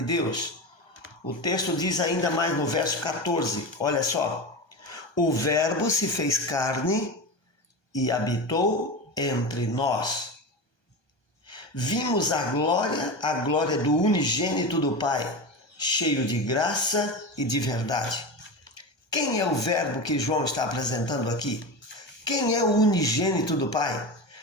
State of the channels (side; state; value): right; late; 1.3 ms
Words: O texto diz ainda mais no verso 14, olha só: o verbo se fez carne e habitou entre nós. Vimos a glória do unigênito do Pai, cheio de graça e de verdade. Quem é o verbo que João está apresentando aqui? Quem é o unigênito do Pai?